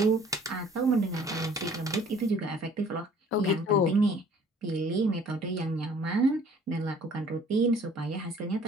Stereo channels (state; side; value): normal; both; correlation 0.54